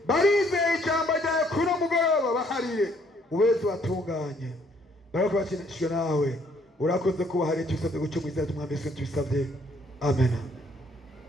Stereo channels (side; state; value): both; normal; correlation 0.65